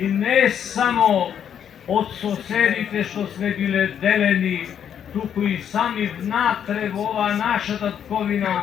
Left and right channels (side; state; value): right; quieter; 8.8 dB